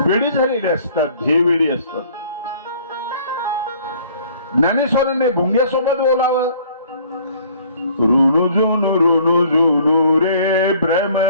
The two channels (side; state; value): both; inverted; correlation -0.56